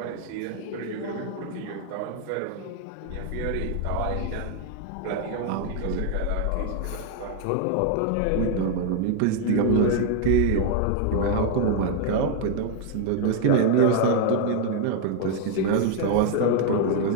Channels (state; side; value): different; both; correlation 0.00